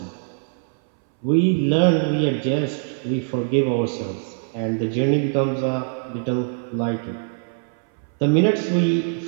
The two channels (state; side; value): silent; left; 62 dB below the other